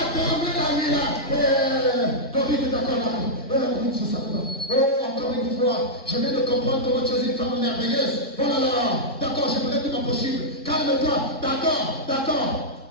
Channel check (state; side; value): normal; both; correlation -0.08